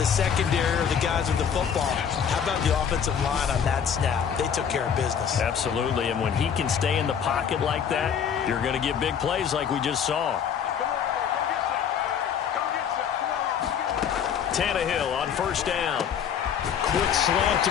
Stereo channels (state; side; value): quieter; right; 7.8 dB